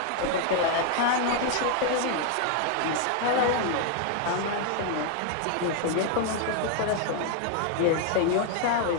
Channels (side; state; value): both; different; correlation 0.00